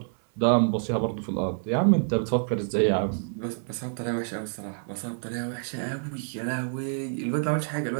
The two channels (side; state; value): left; silent; 60 dB below the other